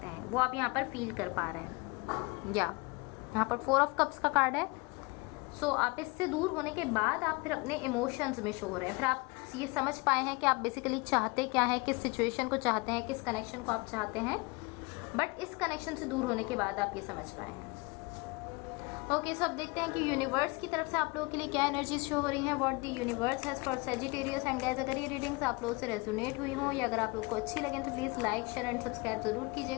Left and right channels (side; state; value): right; quieter; 26.5 dB